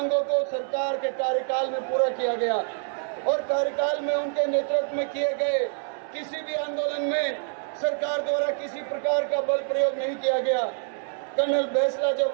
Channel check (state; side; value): silent; left; digital silence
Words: को सरकार के कार्यकाल में पूरा किया गया और कार्यकाल में उनके नेतृत्व में किए गए किसी भी आंदोलन में सरकार द्वारा किसी प्रकार का बल प्रयोग नहीं किया गया। कर्नल बेसला